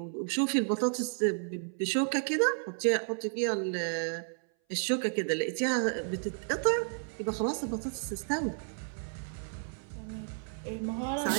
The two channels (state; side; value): silent; left; 56 dB below the other